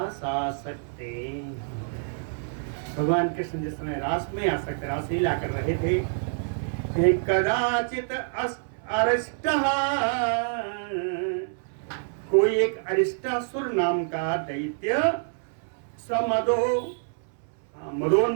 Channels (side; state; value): left; silent; 60 dB below the other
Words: आसक्ते, भगवान कृष्ण जिस समय रास में आसक्त, रास लीला कर रहे थे, कदाचित अरिष्टः, कोई एक अरिष्टासुर नाम का दैत्य